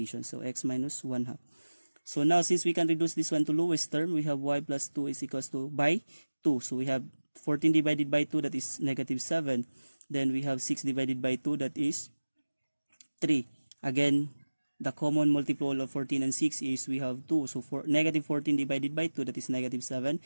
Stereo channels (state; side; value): inverted; both; correlation -1.00